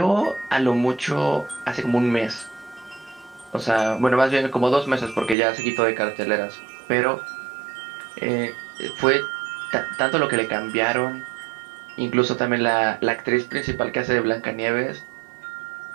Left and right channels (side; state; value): left; drops out; at 5.4 s